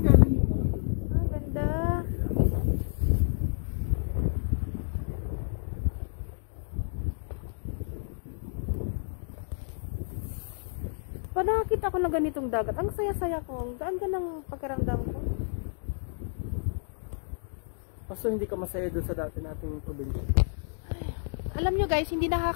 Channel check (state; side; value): silent; right; digital silence